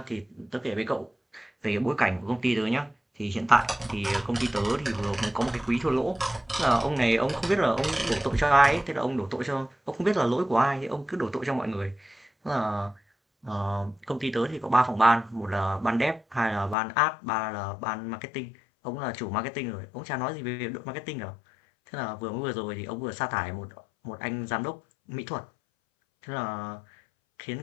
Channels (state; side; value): drops out; right; at 16.8 s